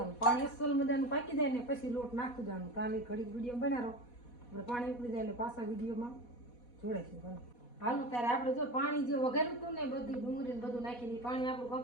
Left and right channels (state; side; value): late; right; 4.1 ms